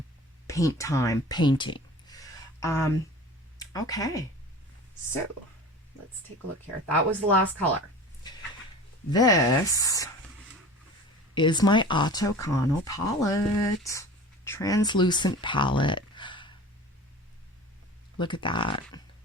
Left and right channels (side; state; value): both; normal; correlation 0.39